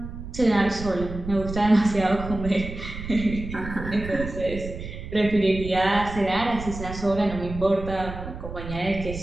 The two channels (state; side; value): noise; right; rumble, 9 dB below the sound